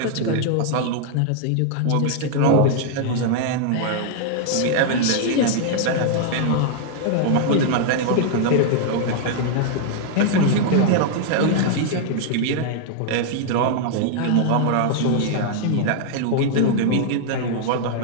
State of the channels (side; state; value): both; different; correlation -0.01